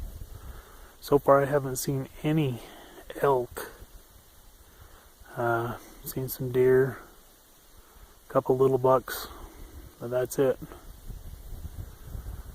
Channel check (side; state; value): both; identical; correlation 1.00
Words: So far I haven't seen any elk. Seen some deer, a couple little bucks, but that's it.